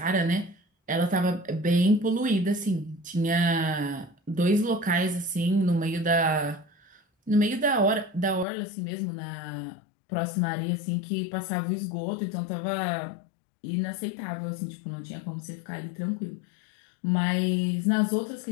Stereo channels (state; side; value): drops out; right; at 8.5 s